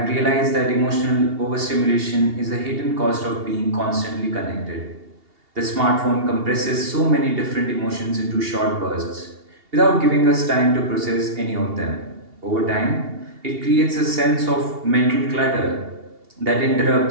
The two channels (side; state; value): left; late; 2.8 ms